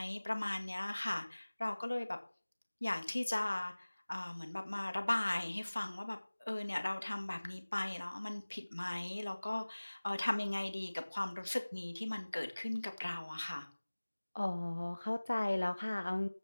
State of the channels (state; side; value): inverted; both; correlation -1.00